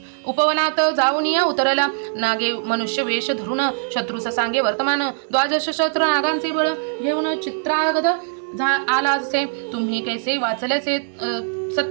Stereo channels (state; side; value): silent; left; digital silence